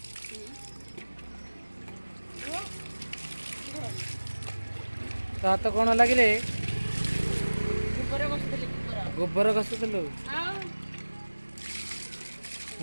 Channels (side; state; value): both; inverted; correlation -1.00